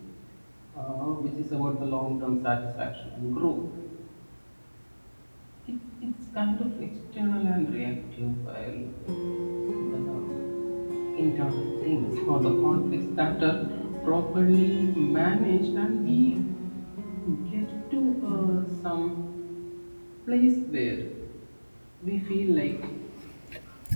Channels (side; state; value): both; inverted; correlation -1.00